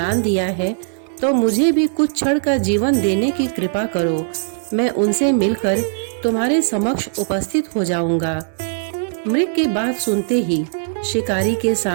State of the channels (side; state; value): left; silent; 66 dB below the other